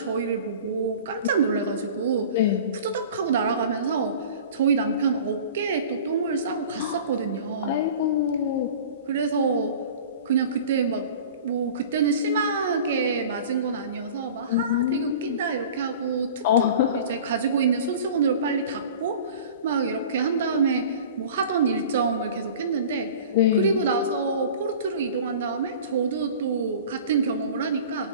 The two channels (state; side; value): inverted; both; correlation -0.40